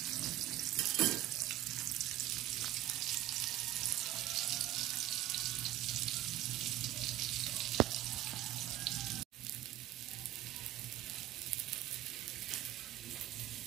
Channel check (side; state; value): left; quieter; 14.6 dB